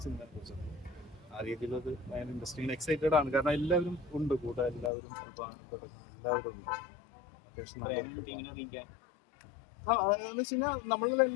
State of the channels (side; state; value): right; drops out; at 4.9 s